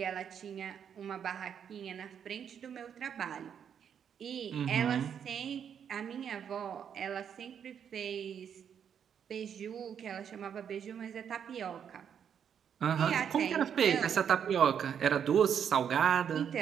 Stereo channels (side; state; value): left; quieter; 8.1 dB